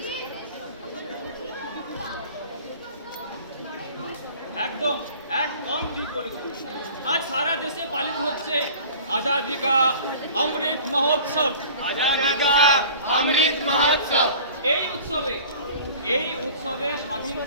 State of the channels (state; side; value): inverted; both; correlation -0.44